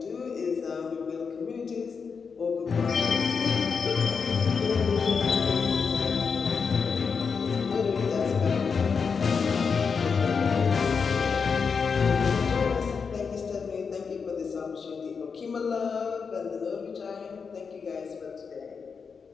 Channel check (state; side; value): quieter; right; 5.6 dB